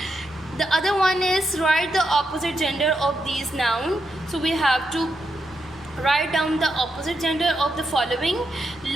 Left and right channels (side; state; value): right; noise; rumble, 27 dB below the sound